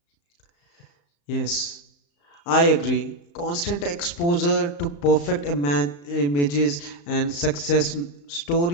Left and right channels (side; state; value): right; late; 35 ms